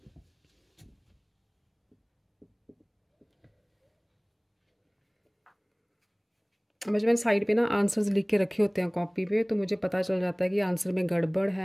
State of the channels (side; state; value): both; identical; correlation 1.00